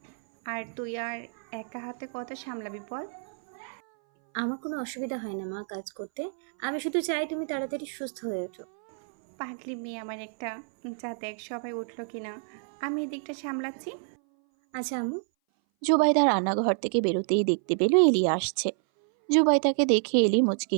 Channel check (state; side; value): silent; left; 58 dB below the other